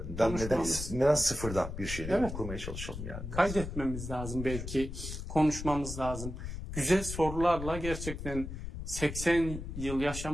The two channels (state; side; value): noise; left; rumble, 7 dB below the sound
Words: neden sıfırdan bir şeyleri kurmaya çalışalım yani. Kaydetmemiz lazım belki, konuşmamız lazım. Güzel sorularla gerçekten 80 yıl